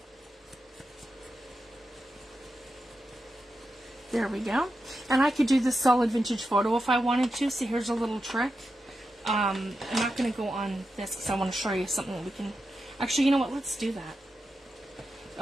There we go. And I could do this solid vintage photo if I wanted to. So here's a little trick. I'm not going to go on this because I want to show you something that we can... Actually, you know what? Let's do that.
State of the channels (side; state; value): both; normal; correlation 0.89